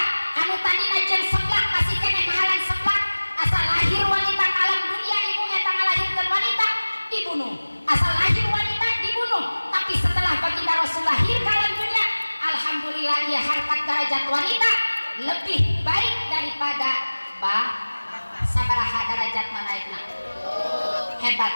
anu tadina jeung seblak masih kene mahalan seblak asal lahir wanita ke alam dunia ibu eta ngalahirkeun wanita dibunuh, asal lahir wanita dibunuh. Tapi setelah baginda Rasul lahir ke alam dunia alhamdulillah ia harkat derajat wanita lebih baik daripada sabaraha derajat naikna hebat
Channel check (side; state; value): both; inverted; correlation -1.00